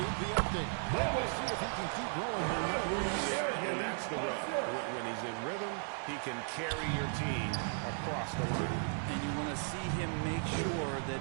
the update. We'll see if he can keep rolling here. Yeah, and that's the rub. When he's in rhythm, he can carry your team across the line. And you want to see him make sure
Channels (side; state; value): left; silent; 54 dB below the other